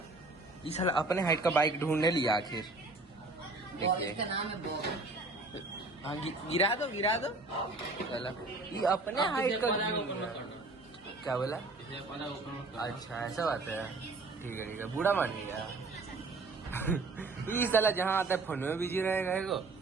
ये साला अपने हाइट का बाइक ढूंढने लिया आखिर। देखिए इसका नाम है बॉब। हाँ गिरा दो चला ये अपने हाइट का क्या बोला? अच्छा ऐसा बात है। ठीक है बूढ़ा मान लिया। ये साला जहाँ आता है फोन में बिजी रहेगा एगो,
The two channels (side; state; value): left; quieter; 3.3 dB